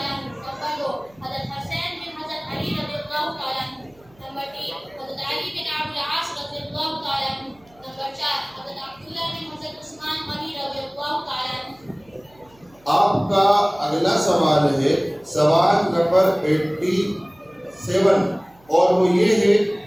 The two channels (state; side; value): noise; right; hum, 30 dB below the sound